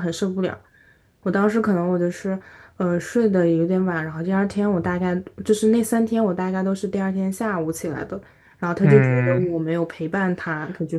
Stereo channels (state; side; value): identical; both; correlation 1.00